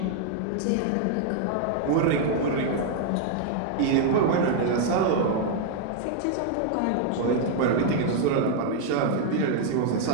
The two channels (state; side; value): different; both; correlation 0.00